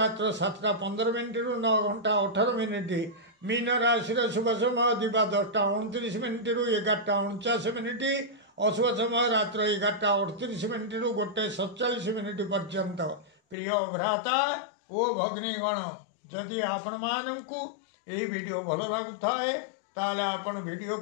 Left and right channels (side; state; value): right; drops out; at 13.6 s